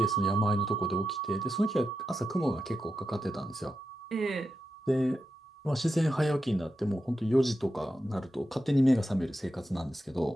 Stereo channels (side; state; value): both; normal; correlation 0.88